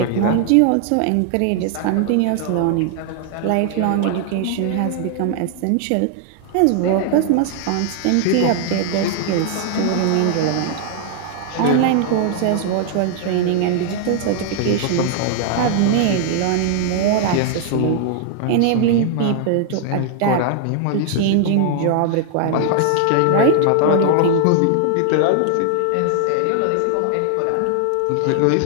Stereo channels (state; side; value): different; both; correlation 0.00